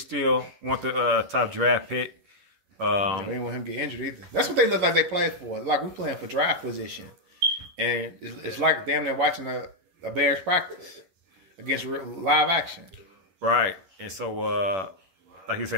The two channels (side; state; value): left; late; 11 ms